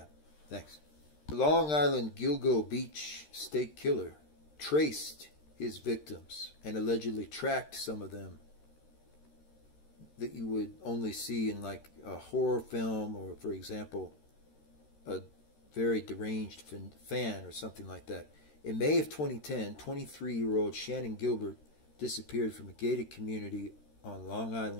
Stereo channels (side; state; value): right; late; 13 ms